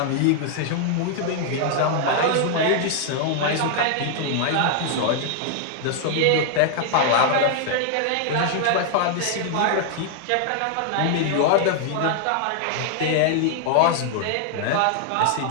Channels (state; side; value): different; both; correlation 0.00